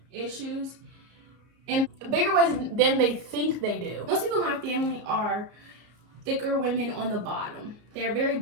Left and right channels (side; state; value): left; late; 33 ms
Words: issues in bigger ways than they think they do. Most people in my family are thicker women on the bottom. They're very